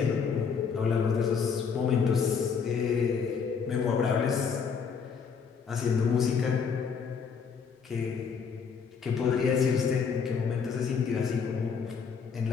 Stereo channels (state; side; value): quieter; right; 6.1 dB